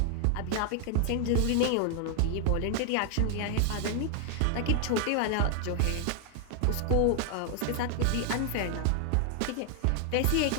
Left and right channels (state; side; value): different; both; correlation 0.00